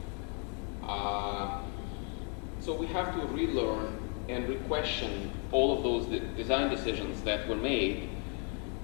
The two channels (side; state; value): right; quieter; 39.8 dB